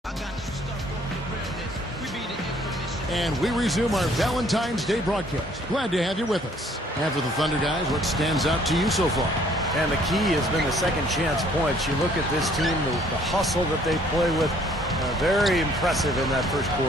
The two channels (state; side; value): normal; both; correlation 0.60